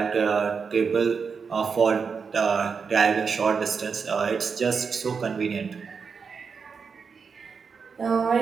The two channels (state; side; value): quieter; left; 5.6 dB